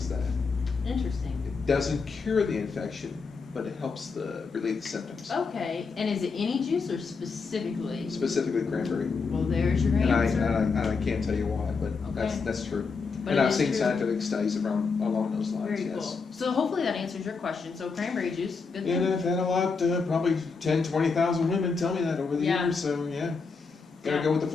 that. Interesting. It doesn't cure the infection, but it helps relieve the symptoms. Okay, and is it any juice or specifically? Specifically cranberry. Well, there's your answer. And I can't tell you why, but that's true. But and I've seen scientific studies along those lines. Very cool. So hopefully that answers your question. So cranberry juice, good thing. And I've had a lot, probably 10, 20,000 women tell me that over the years. So gotta go with the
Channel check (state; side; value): quieter; right; 4.8 dB